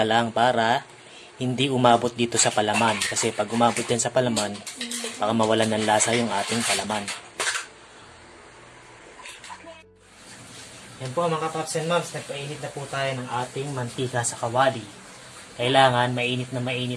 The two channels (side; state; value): both; identical; correlation 1.00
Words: lang para hindi umabot dito sa palaman. Kasi pag umabot din sa palaman, baka mawalan ng lasa yung ating palaman. Yan po mga Pops and Moms, nagpainit na po tayo ng ating mantika sa kawali. Kailangan mainit na